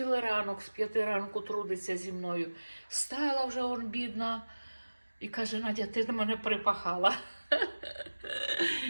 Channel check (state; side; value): inverted; both; correlation -1.00